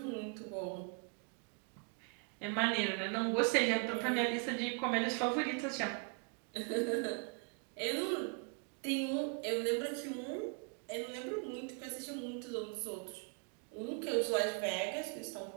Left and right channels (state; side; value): quieter; left; 38.7 dB